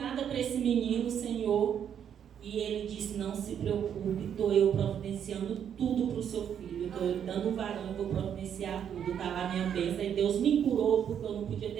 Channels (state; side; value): quieter; left; 8.7 dB